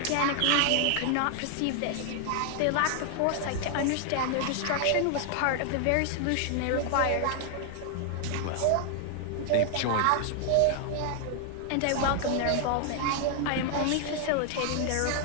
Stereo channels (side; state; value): both; different; correlation 0.00